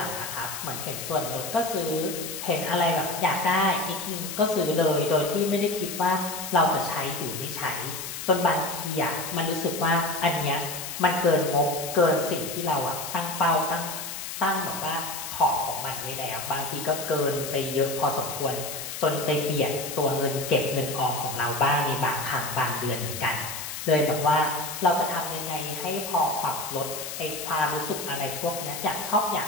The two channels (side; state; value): left; noise; hiss, 7 dB below the sound